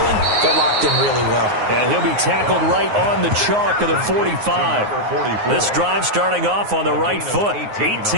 they're locked in really well. And he'll be tackled right on the chalk of the 45. This drive starting off on the right foot,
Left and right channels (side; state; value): left; late; 9.5 ms